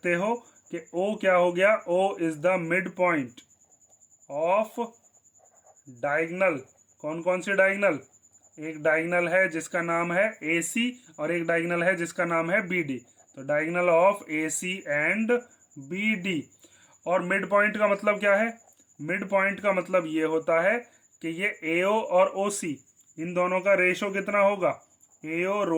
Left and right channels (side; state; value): both; identical; correlation 1.00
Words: हो कि O क्या हो गया, O is the mid point of diagonal. कौन कौन सी डायगोनल, एक डायगोनल है जिसका नाम है AC और एक डायगोनल है जिसका नाम है BD। तो diagonal of AC and BD। और मिड पॉइंट का मतलब क्या है, मिड पॉइंट का मतलब ये होता है कि ये AO और OC इन दोनों का रेशो कितना होगा,